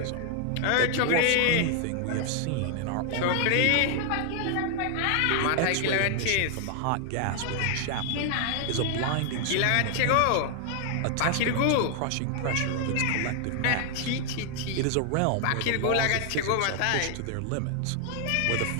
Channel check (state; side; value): different; both; correlation 0.00